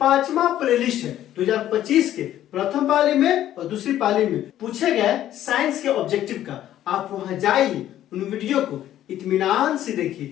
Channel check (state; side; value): quieter; right; 12.3 dB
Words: प्लेलिस्ट है। 2025 के प्रथम पाली में और दूसरी पाली में पूछे गए साइंस के ऑब्जेक्टिव का आप वहां जाइए, उन वीडियो को इत्मीनान से देखिए